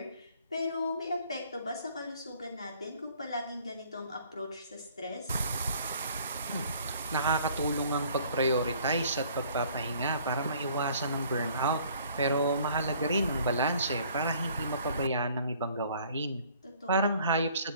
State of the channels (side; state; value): both; inverted; correlation -0.57